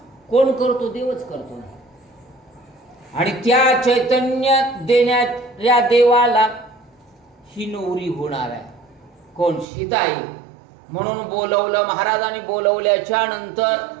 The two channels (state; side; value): drops out; left; at 9.7 s